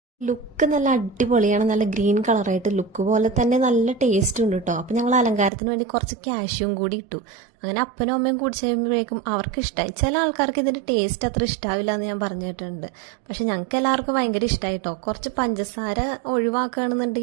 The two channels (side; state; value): left; drops out; at 5.5 s